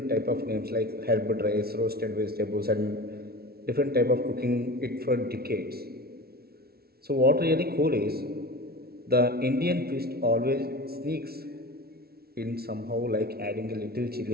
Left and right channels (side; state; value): left; late; 0.45 ms